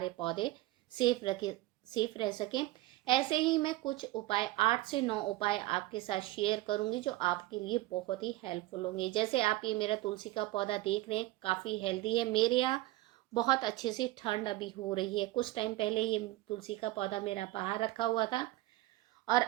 पौधे सेफ रह सकें। ऐसे ही मैं कुछ उपाय 8 से 9 उपाय आपके साथ शेयर करूंगी जो आपके लिए बहुत ही हेल्पफुल होंगे। जैसे आप ये मेरा तुलसी का पौधा देख रहे हैं, काफ़ी हेल्दी है। मेरे यहाँ बहुत अच्छे से ठंड अभी हो रही है। कुछ टाइम पहले ये तुलसी का पौधा मेरा बाहर रखा हुआ था और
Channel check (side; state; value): left; quieter; 17.8 dB